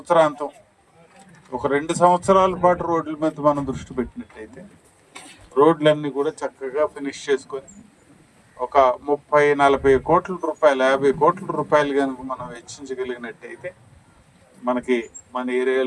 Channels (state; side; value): identical; both; correlation 1.00